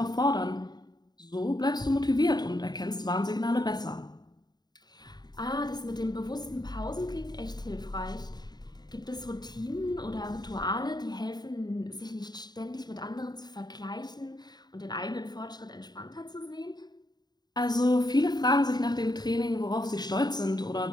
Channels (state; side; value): late; right; 0.20 ms